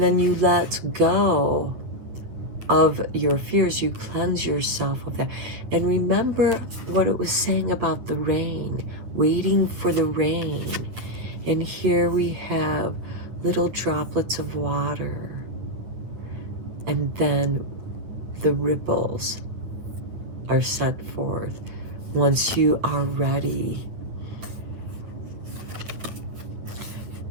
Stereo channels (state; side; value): late; left; 9.6 ms